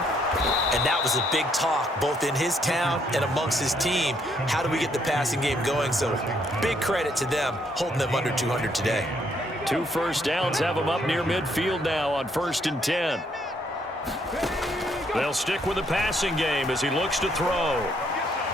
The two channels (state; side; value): normal; both; correlation 0.70